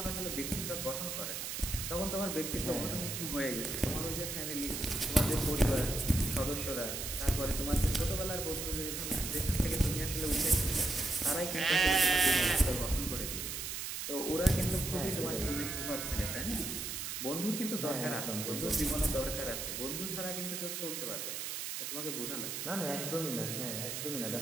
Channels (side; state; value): right; noise; hiss, 4 dB below the sound